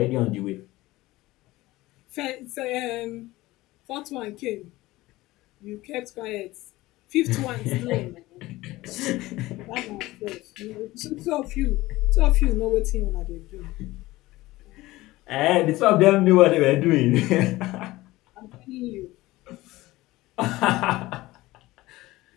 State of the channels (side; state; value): right; quieter; 18.5 dB